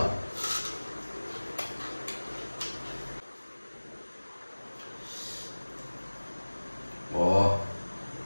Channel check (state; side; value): inverted; both; correlation -1.00